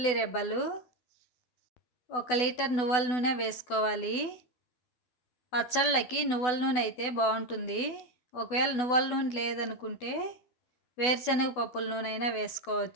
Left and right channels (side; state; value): right; late; 12 ms